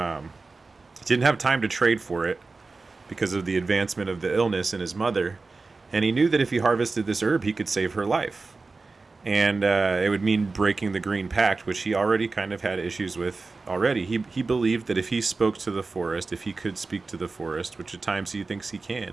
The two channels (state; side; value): quieter; left; 3.9 dB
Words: Didn't have time to trade for it because of the advancement of the illness in his mother. And he knew that if he harvested this herb, he could save her life. And it would mean breaking the Green Pact, which he already kind of had issues with already. He believed that if he spoke to the forest, if he could speak to the forest, which at times he thinks he